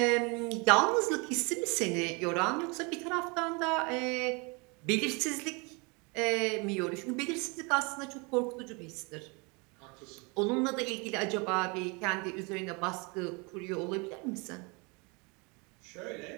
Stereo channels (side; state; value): left; quieter; 29.8 dB